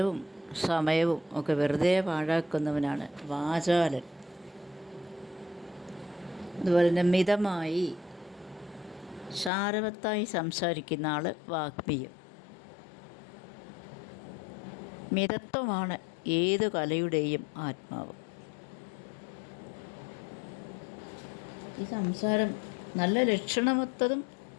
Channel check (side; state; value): right; drops out; at 9.5 s